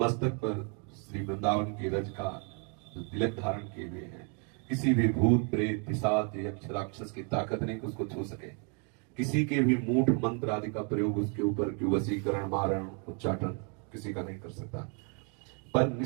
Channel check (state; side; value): quieter; left; 37.7 dB